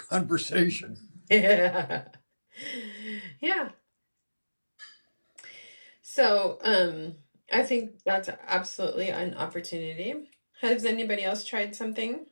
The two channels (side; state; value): both; inverted; correlation -1.00